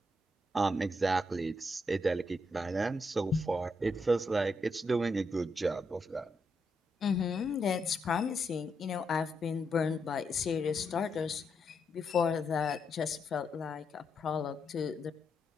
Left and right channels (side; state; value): both; normal; correlation 0.81